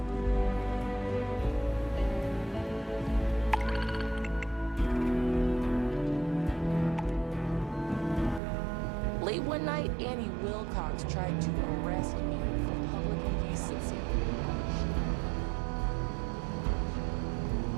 Late one night, Annie Wilcox tried to arrest me for public indecency.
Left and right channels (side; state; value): left; drops out; at 8.4 s